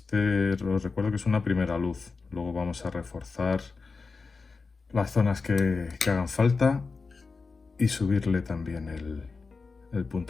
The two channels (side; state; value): right; quieter; 4.4 dB